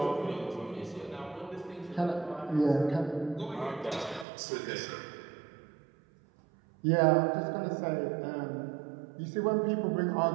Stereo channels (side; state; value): left; drops out; at 4.2 s